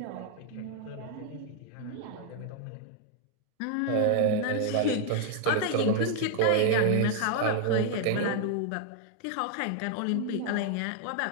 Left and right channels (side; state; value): both; different; correlation 0.00